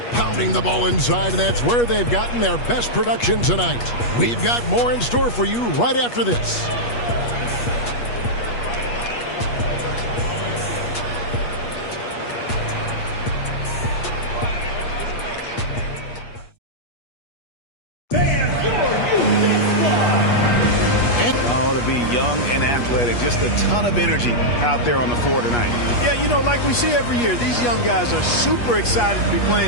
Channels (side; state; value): right; late; 8.4 ms